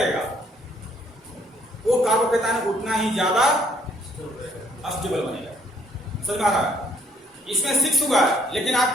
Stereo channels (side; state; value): both; normal; correlation 0.65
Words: वो कार्बोकेटाइन उतना ही ज्यादा अस्टेबल बनेगा। समझ आ रहा है? इसमें 6 हुआ, लेकिन